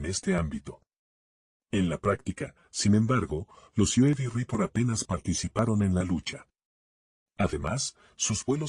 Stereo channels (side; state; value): both; identical; correlation 1.00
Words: este ámbito. En la práctica, sin embargo, los UAV Reaper apenas participaron en la lucha. Además, sus